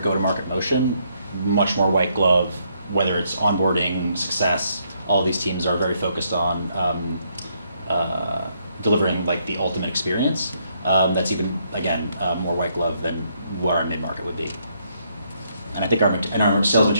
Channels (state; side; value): inverted; both; correlation -0.73